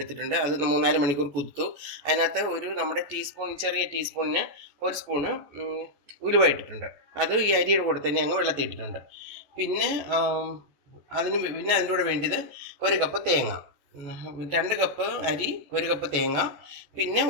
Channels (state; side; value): late; left; 14 ms